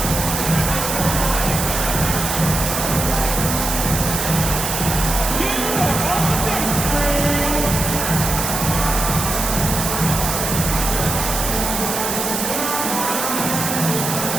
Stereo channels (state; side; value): noise; right; hiss, 2 dB below the sound